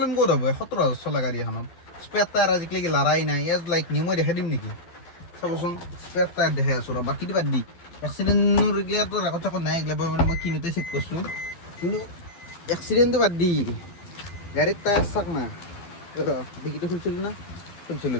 ক'ত হ'ব 17,000 চলা গাড়ী এখনত? স্পেয়াৰ টায়াৰ আজিকালি লৰাই নাই, এজ লাইক নিউ। মই দেখাই দিম নেকি, চাবচোন, স্পেয়াৰ টায়াৰ দেখাই আছোঁ ৰ। বাকীটো বাদ দি, এক্সিডেণ্টৰ এইগিলাটো ৰেকৰ্ড চেকৰ্ড নাই, এইগিলা মানে মই কিনোতে চেক কৰিছোঁ। কিন্তু এক্সিডেণ্টটো বাদ দি, গাড়ীৰ টায়াৰ চাক না, ডিকিটো খুলিছিলোঁ না,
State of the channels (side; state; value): right; late; 12 ms